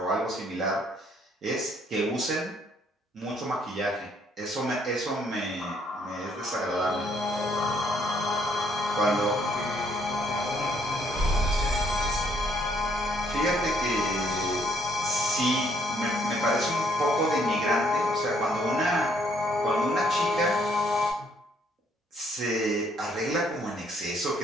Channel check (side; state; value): both; normal; correlation 0.68